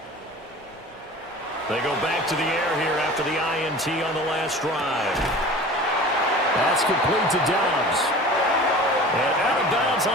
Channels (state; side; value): normal; both; correlation 0.40